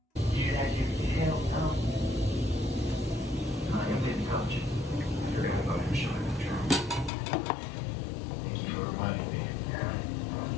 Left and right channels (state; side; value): drops out; right; at 7.1 s